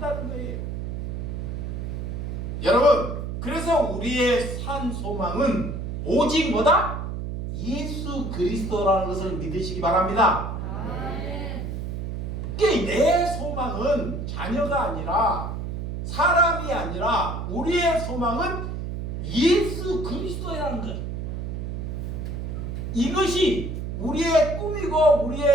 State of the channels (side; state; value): right; noise; hum, 5 dB below the sound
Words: 거예요. 여러분, 그래서 우리의 산 소망은 오직 뭐다? 예수 그리스도라는 것을 믿으시기 바랍니다. 내 소망은 자녀가 아니라, 사람이 아니라 우리의 소망은 예수 그리스도라는 것. 이것이 우리의 꿈이고